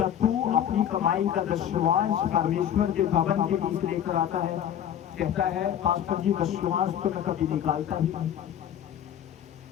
तू अपनी कमाई का दशमांश परमेश्वर के भवन के बीच लेकर आता है? कहता है, पास्टर जी दशमांश तो मैं कभी निकालता ही नहीं।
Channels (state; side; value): quieter; right; 10.0 dB